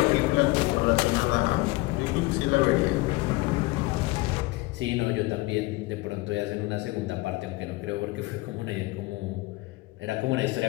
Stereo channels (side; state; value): right; quieter; 21.8 dB